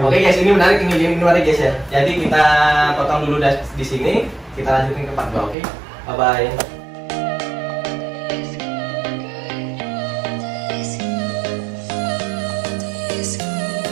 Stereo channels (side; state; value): left; drops out; at 5.6 s